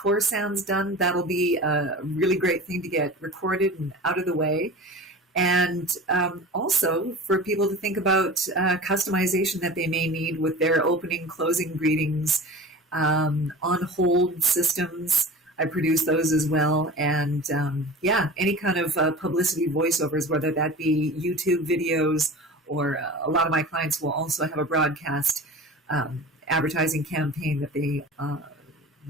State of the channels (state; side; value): normal; both; correlation 0.36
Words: sounds done, that'll be a really great thing to get recorded and out of the way. And also for people to think about customization that they may need with their opening, closing greetings, on hold systems. I produce those as well. And any kind of publicity voiceovers, whether that be YouTube videos or a lot of my clients will also have a broadcast advertising campaign that they